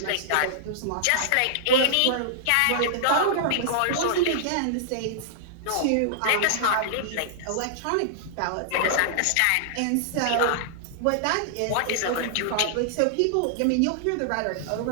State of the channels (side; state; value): both; different; correlation -0.01